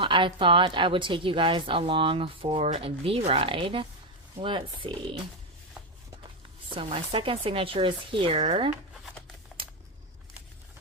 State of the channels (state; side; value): normal; both; correlation 0.07